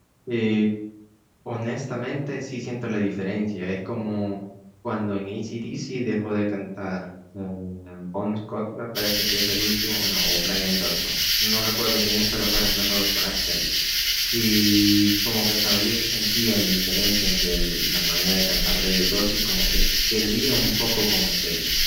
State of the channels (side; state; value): both; identical; correlation 1.00